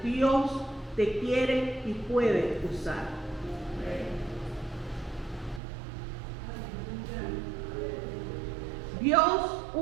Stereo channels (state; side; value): drops out; left; at 5.6 s